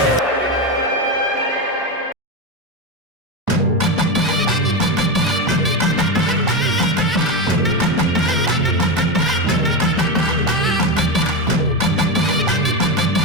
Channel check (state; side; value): normal; both; correlation 0.16